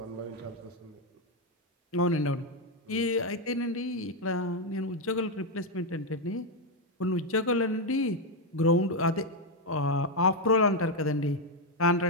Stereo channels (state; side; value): normal; both; correlation 0.03